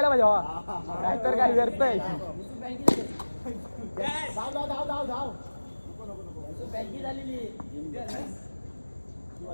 पाहिजे नाहीतर काय व्यर्थय.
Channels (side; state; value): both; inverted; correlation -1.00